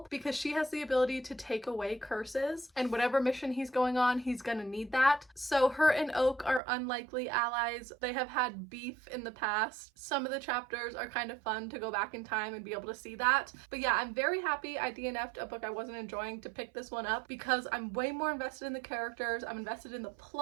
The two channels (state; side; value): drops out; left; at 6.6 s